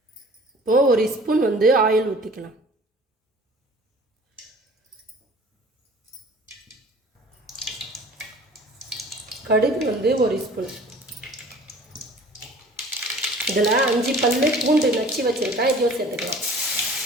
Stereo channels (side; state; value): both; normal; correlation 0.47